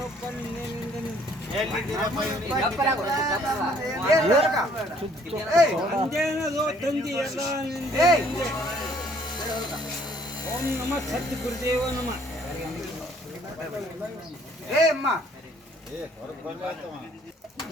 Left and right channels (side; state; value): both; normal; correlation 0.61